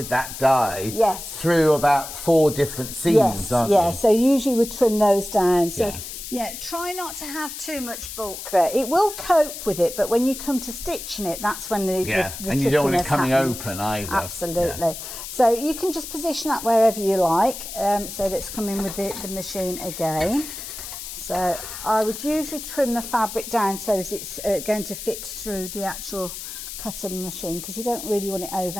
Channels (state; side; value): noise; left; hiss, 9 dB below the sound